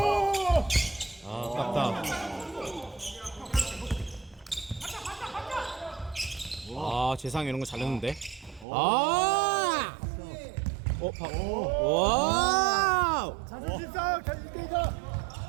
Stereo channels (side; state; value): left; drops out; at 8.7 s